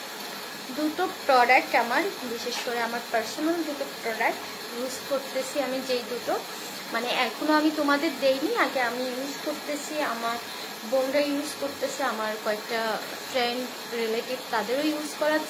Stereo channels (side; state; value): both; identical; correlation 1.00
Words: দুটো প্রোডাক্ট, আমার বিশেষ করে আমার পার্সোনাল দুটো প্রোডাক্ট ইউজ করতেছি আমি, যেই দুটো মানে এখনো আমি তোমাদের দেইনি, আগে আমি ইউজ করতেছি, আমার বোনরা ইউজ করতেছে, আমার কয়েকটা ফ্রেন্ড রিলেটিভ তাদেরও ইউজ